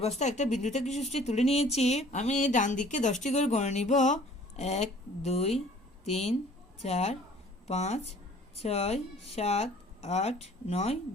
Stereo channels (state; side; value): normal; both; correlation 0.52